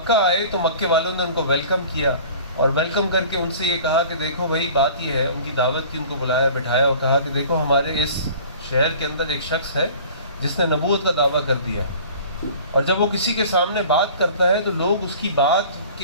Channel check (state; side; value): inverted; both; correlation -0.45